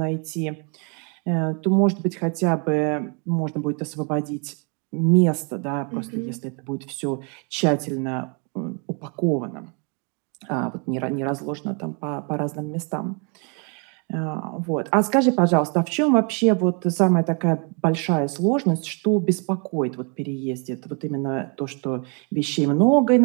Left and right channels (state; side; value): quieter; left; 36.3 dB